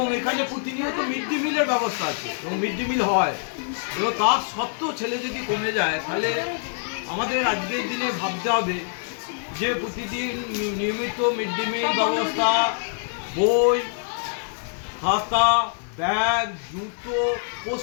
এখানে প্রতিনিয়ত মিড ডে মিলের ব্যবস্থা আছে এবং মিড ডে মিল হয়। এবং তার সত্ত্বেও ছেলে যদি কমে যায়, তাহলে আমাদের আজকের দিনে ভাবতে হবে যে প্রতিদিন নিয়মিত মিড ডে মিল ব্যবস্থা, বই, খাতা, ব্যাগ, জুতো,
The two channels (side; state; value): right; silent; 62 dB below the other